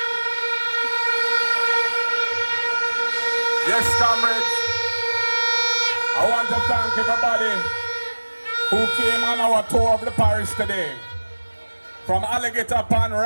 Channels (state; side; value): inverted; both; correlation -1.00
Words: Yes, comrades, I want to thank everybody who came on our tour of the parish today. From Alligator Pond